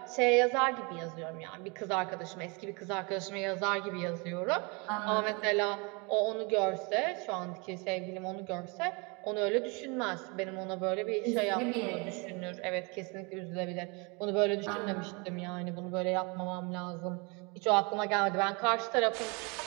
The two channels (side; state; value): left; quieter; 30.3 dB